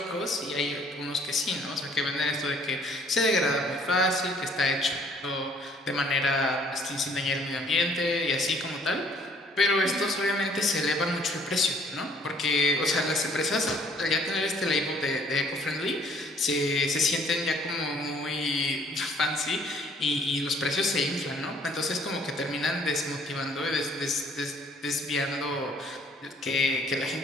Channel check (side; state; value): both; normal; correlation 0.60